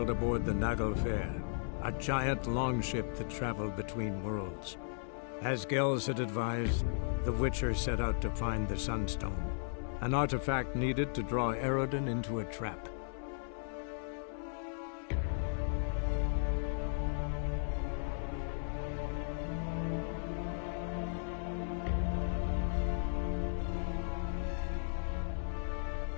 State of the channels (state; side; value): silent; right; 54 dB below the other